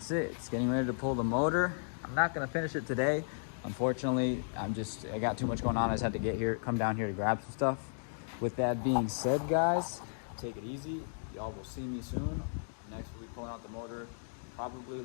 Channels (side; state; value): right; silent; digital silence